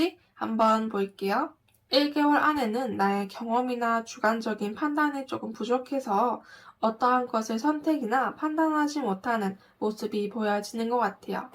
한번 볼게요. 1개월 안에는 나의 경험이나 주관적인 판단이 조금 부족해서 어떠한 것을 선택이나 판단하지 못하는 모습이 보여지는 것 같아요.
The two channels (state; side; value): identical; both; correlation 1.00